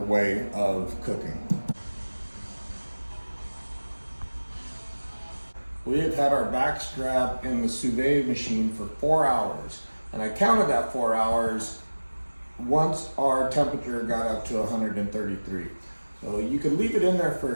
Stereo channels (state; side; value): inverted; both; correlation -1.00